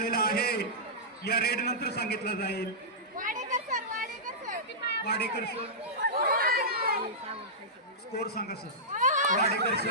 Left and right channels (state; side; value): normal; both; correlation -0.15